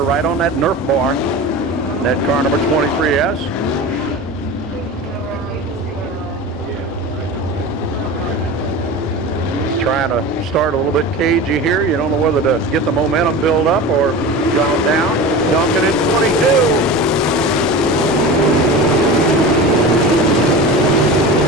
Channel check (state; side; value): normal; both; correlation 0.31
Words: right on that Nerf bar. That car number 23S. Trying to start a little bit cagey here. You don't know whether to get the momentum build up or gone down. Duncan in 22.